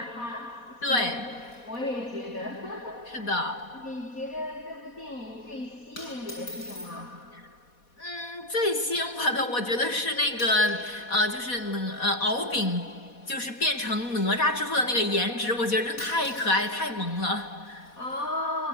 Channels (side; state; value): right; late; 4.2 ms